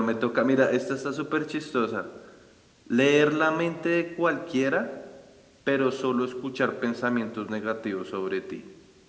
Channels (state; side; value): identical; both; correlation 1.00